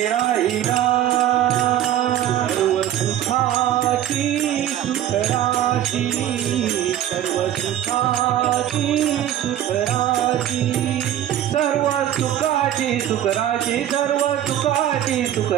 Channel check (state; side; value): quieter; left; 11.7 dB